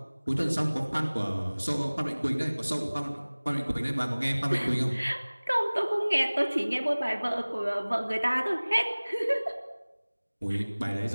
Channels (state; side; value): inverted; both; correlation -1.00